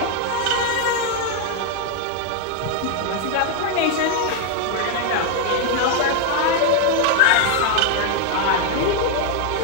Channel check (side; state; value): both; different; correlation 0.00